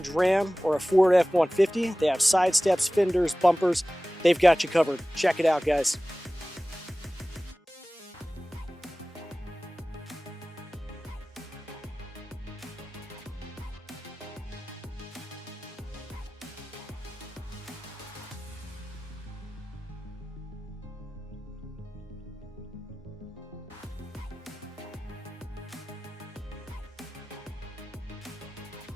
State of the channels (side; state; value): both; normal; correlation 0.97